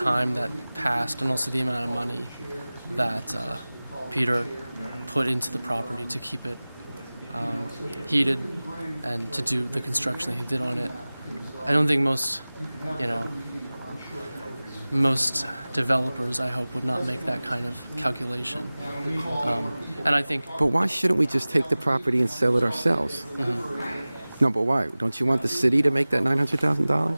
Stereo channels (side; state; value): both; inverted; correlation -0.98